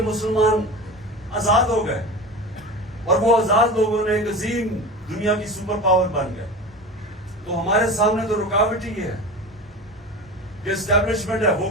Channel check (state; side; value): normal; both; correlation 0.30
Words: مسلمان آزاد ہو گئے, اور وہ آزاد لوگوں نے ایک عظیم دنیا کی سپر پاور بن گئے. تو ہمارے سامنے تو رکاوٹ ہی ہے کہ اسٹیبلشمنٹ ہے وہ